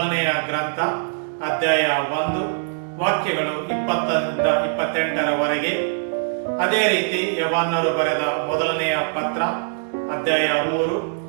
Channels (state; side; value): silent; left; 64 dB below the other